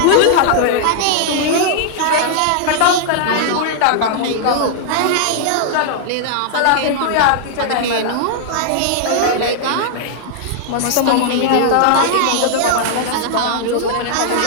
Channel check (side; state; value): both; different; correlation -0.01